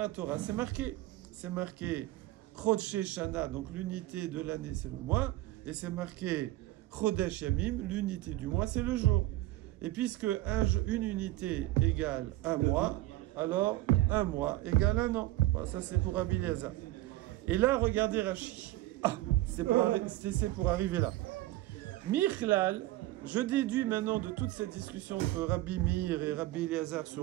Torah, c'est marqué. C'est marqué Chodshé Shana, donc l'unité de l'année, c'est le mois. Et c'est marqué Chodesh Yamim, l'unité du mois, c'est le jour. Et puisque une unité égale un mois, alors un mois égale un an. Voilà, ça c'est pour Rabbi Eliezer. Et là, regardez Rashi. Ah, c'est pour arriver là. Michlal, je déduis maintenant de toute cette discussion entre Rabbi Meir et Rabbi Eliezer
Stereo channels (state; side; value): quieter; left; 16.5 dB